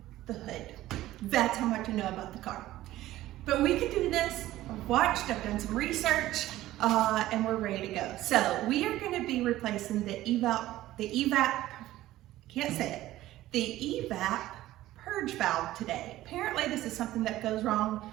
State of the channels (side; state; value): left; quieter; 15.3 dB